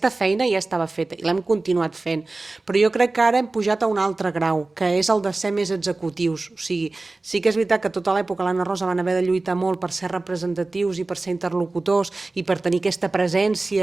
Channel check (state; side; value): quieter; left; 3.3 dB